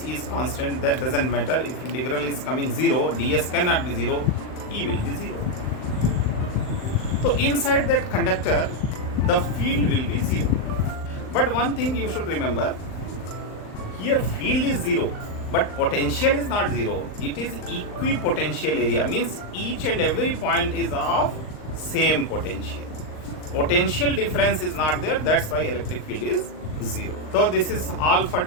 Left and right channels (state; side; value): late; right; 38 ms